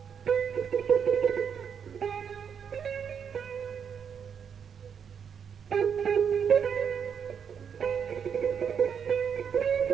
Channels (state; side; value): quieter; left; 7.3 dB